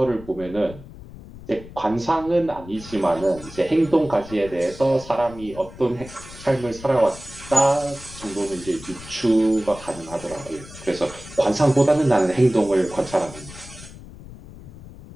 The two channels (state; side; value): noise; left; rumble, 16 dB below the sound